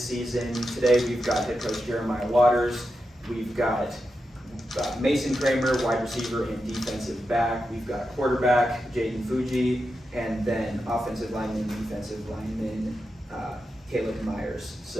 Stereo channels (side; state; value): both; normal; correlation 0.88